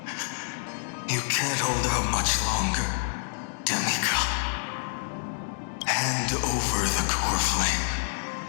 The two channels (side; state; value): right; silent; digital silence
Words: You can't hold out much longer, demigod. Hand over the core flame.